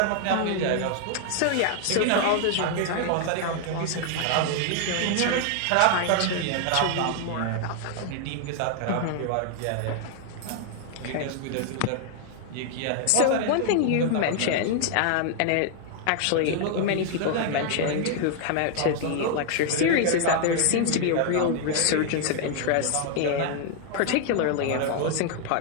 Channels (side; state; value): both; different; correlation 0.00